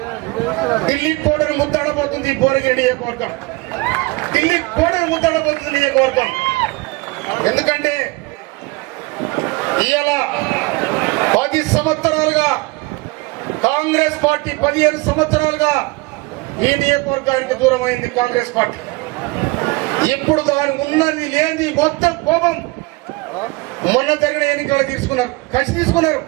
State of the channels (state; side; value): quieter; left; 24.1 dB